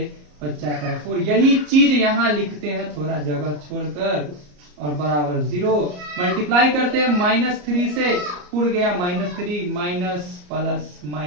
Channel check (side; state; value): left; late; 34 ms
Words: बच जाता है 4। यही चीज यहां लिखते हैं थोड़ा जगह छोड़कर, और बराबर 0 मल्टीप्लाई करते हैं -3 से, पुर गया -3 माइनस प्लस